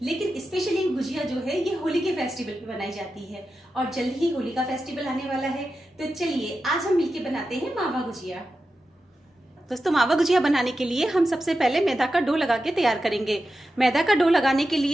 लेकिन स्पेशली गुजिया जो है ये होली के फेस्टिवल पे बनाई जाती है और जल्द ही होली का फेस्टिवल आने वाला है। तो चलिए आज हम मिलके बनाते हैं मावा गुजिया। दोस्तों मावा गुजिया बनाने के लिए हम सबसे पहले मैदा का डो लगा के तैयार करेंगे। मैदा का डो लगाने के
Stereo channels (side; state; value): both; normal; correlation 0.91